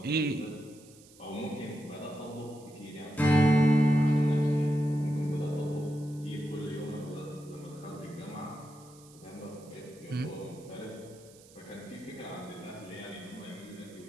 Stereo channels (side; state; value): right; noise; hiss, 24 dB below the sound